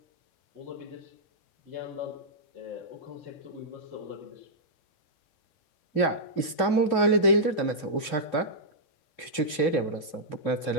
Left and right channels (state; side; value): late; right; 2.9 ms